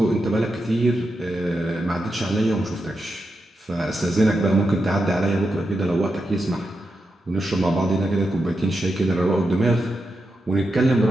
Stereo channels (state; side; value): normal; both; correlation 0.87